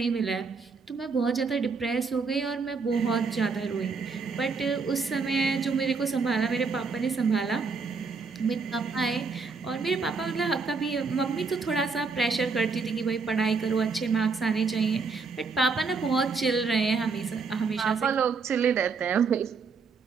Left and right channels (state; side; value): quieter; left; 4.7 dB